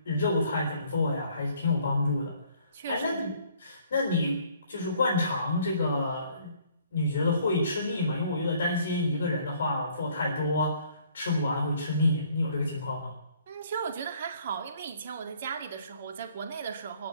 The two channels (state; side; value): inverted; both; correlation -0.61